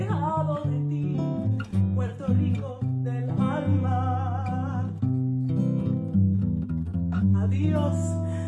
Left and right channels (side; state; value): both; identical; correlation 1.00